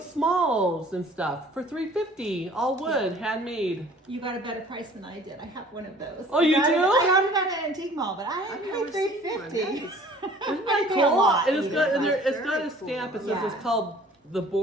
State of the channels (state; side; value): normal; both; correlation 0.51